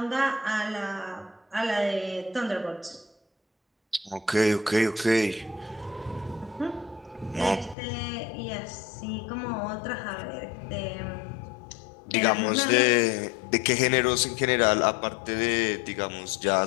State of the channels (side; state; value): right; drops out; at 7.8 s